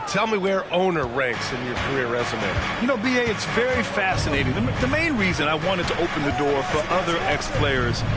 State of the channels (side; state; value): both; identical; correlation 1.00